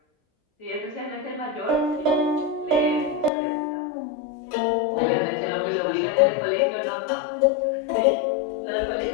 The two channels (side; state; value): right; drops out; at 3.3 s